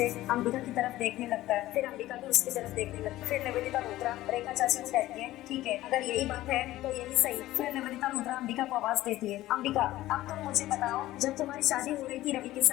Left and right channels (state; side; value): quieter; right; 15.8 dB